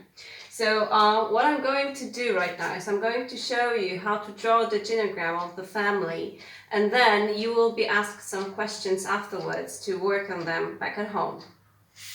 So what I'm going to do right now is I'm going to show you how to draw the genogram of the family, and then you will be asked some questions afterwards to work on them back at home.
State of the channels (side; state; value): both; identical; correlation 1.00